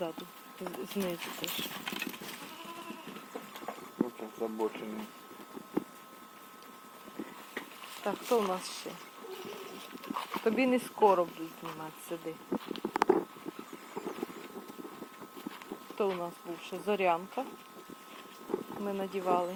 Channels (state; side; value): identical; both; correlation 1.00